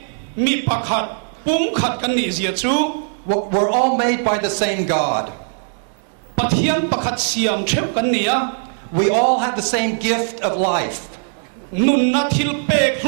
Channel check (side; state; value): left; silent; digital silence